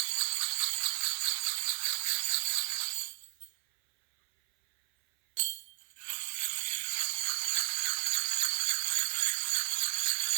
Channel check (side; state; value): left; silent; 56 dB below the other